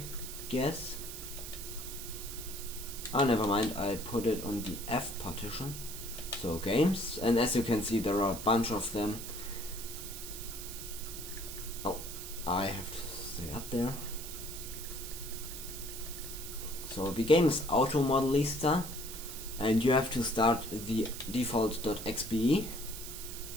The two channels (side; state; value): right; noise; hiss, 9 dB below the sound